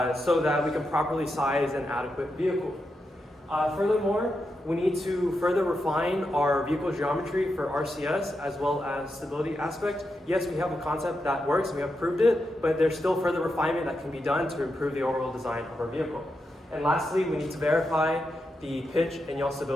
so that we can properly size an adequate vehicle. Furthermore, we need to further refine our vehicle geometry for RCS as well as stability aspect. Yes, we have a concept that works, and we have proved it, but there's still further refinement that can be done to improve the overall design of our vehicle. And lastly, we need to verify the pitch and yaw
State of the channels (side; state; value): both; normal; correlation 0.86